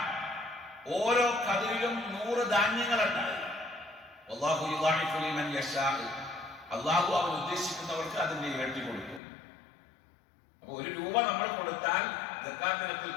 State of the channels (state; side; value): drops out; right; at 9.2 s